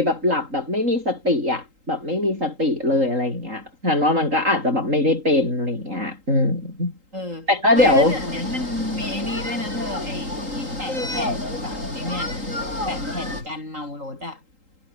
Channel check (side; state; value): left; late; 3.8 ms